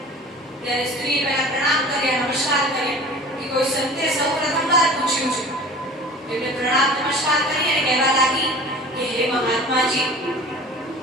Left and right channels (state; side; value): normal; both; correlation 0.41